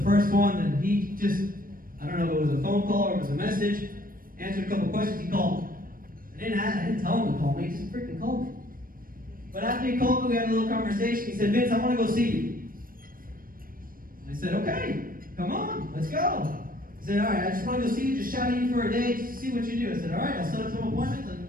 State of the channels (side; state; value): left; late; 0.41 ms